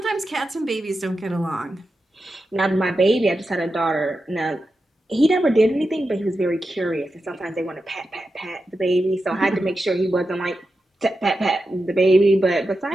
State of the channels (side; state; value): both; normal; correlation 0.90